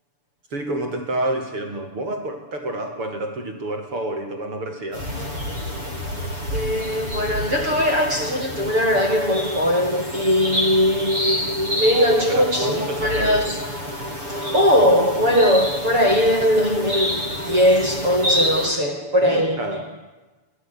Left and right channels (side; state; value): left; late; 6.9 ms